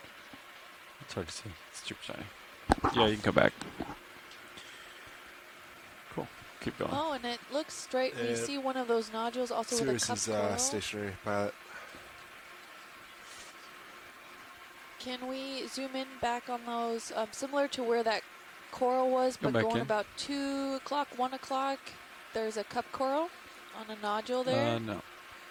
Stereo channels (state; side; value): identical; both; correlation 1.00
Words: It's hard to see. It's super shiny. Yeah, you can come back. Cool. Keep going. Oh, and it looks straight. We see one of those nodules also with a cup coral. Stationary pilot. Can we zoom in back on those, similar to where that coral was, but back going in. about 2 o'clock, 1 o'clock? There's a cup coral on a nodule there. No.